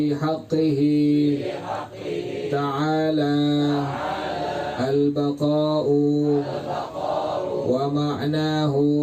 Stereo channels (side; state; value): both; identical; correlation 1.00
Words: حقه تعالى البقاء ومعناه